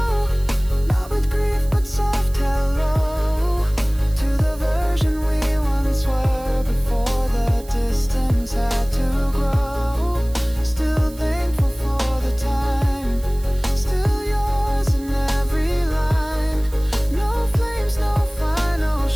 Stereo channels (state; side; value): noise; right; hiss, 21 dB below the sound